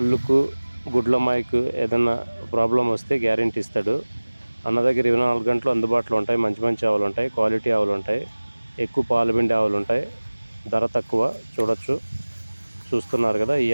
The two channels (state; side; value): inverted; both; correlation -1.00